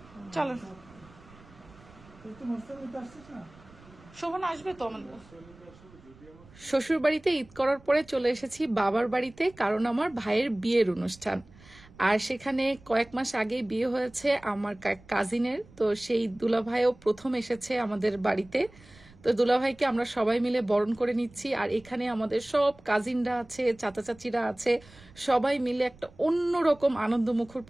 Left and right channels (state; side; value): noise; right; rumble, 24 dB below the sound